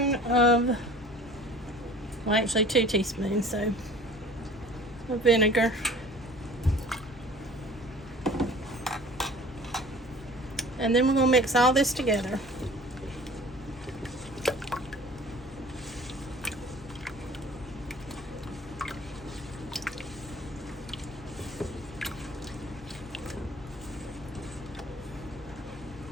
of, well, actually 2 teaspoons, so, of vinegar. And then we're going to mix all this together.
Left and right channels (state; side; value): normal; both; correlation 0.46